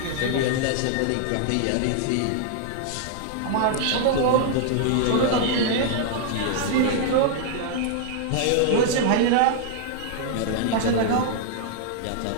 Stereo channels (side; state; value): both; different; correlation 0.00